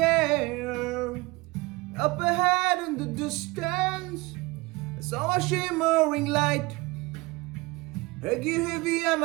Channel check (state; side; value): quieter; left; 23.1 dB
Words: air. Up ahead in the distance, I saw a shimmering light. Heavy on